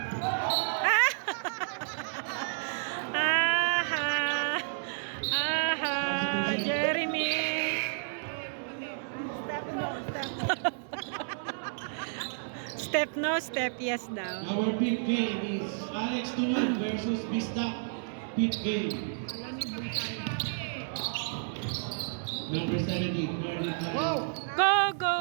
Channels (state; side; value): silent; left; 57 dB below the other